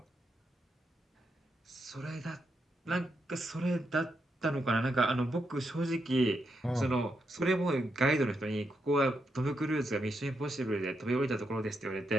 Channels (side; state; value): both; normal; correlation 0.82